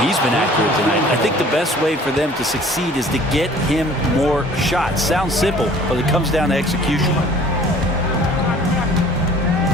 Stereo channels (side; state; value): both; normal; correlation 0.51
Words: He's been accurate tonight. I think the best way for them to succeed is to get him more shots. Sounds simple, but it comes down to execution.